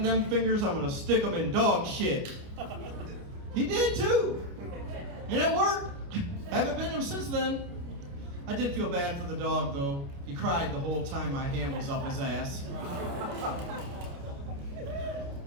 them fingers, I'm gonna stick them in dog shit. He did too. And it worked. Haven't been him since then. I did feel bad for the dog though. He cried the whole time my hand was up his ass.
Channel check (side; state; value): left; late; 29 ms